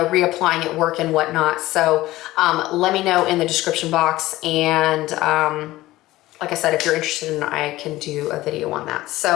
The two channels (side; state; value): right; quieter; 17.1 dB